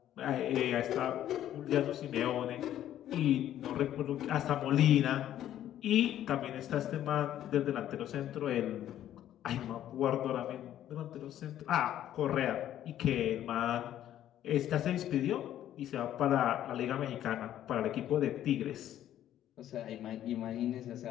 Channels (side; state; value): right; quieter; 11.8 dB